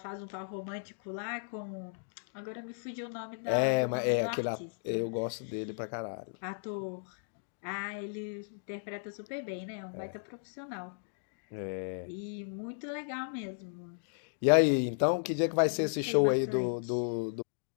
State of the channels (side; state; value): right; silent; digital silence